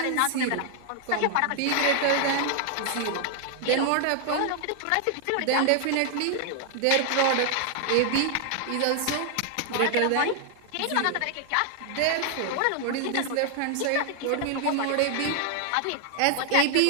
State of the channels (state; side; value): different; both; correlation 0.00